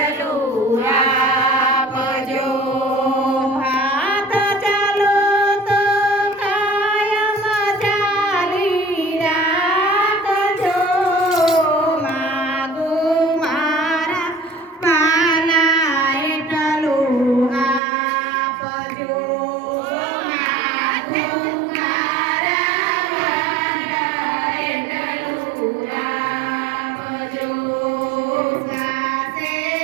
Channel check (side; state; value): left; drops out; at 17.8 s